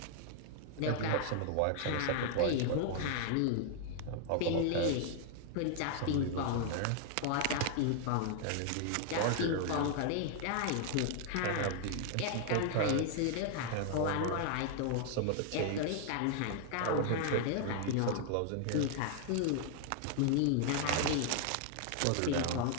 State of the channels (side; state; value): both; different; correlation 0.00